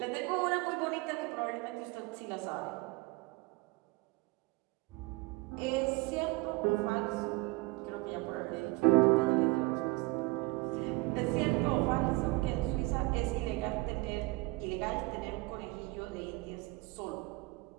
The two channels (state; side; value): quieter; left; 23.6 dB